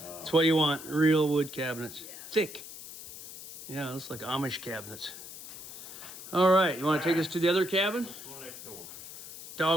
That's what you want. Real wood cabinets. Yes. Thick. Yeah, looks like Amish cabinets. All right. You want to take us to the other cabin? Go next door.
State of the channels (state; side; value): noise; left; hiss, 13 dB below the sound